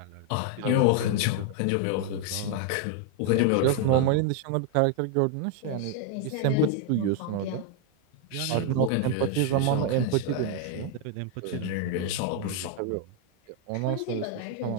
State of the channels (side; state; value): both; different; correlation 0.01